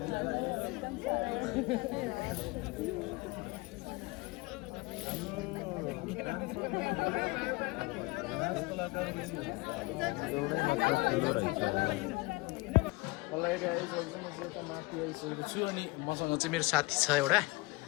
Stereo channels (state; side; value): quieter; right; 23.7 dB